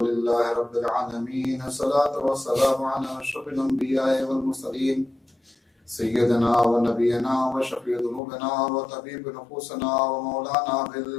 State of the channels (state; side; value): drops out; right; at 8.2 s